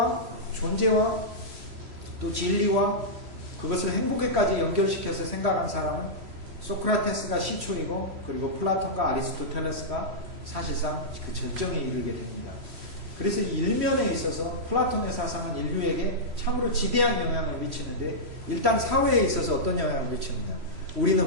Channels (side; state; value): left; late; 3.1 ms